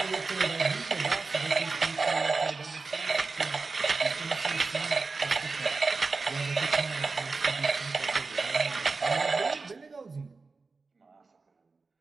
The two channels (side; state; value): left; quieter; 4.1 dB